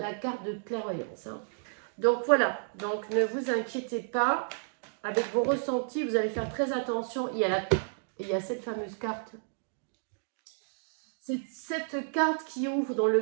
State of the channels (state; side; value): silent; left; digital silence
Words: carte de clairvoyance. Hein. Donc voilà, donc ne vous inquiétez pas. Avec vos ressentis, vous allez faire très attention. Il y a cette fameuse carte. C'est cette carte qui ouvre dans